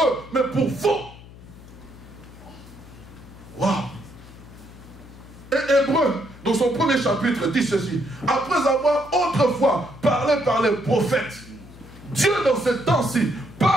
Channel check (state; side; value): noise; left; hum, 19 dB below the sound